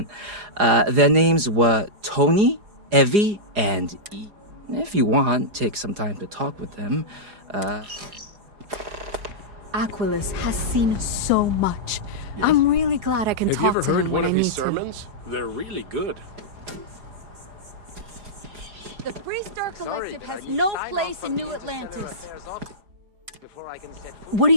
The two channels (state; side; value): late; left; 4.9 ms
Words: Their names were Tony, Evie, and E. If you want, take some time to talk with them. Aquilus has seen so much. Yes. I'm really glad I can Have you talk ever to heard him one when of I his need to. sermons? They're really good. The Freestar Collective has no place in New Atlantis. What do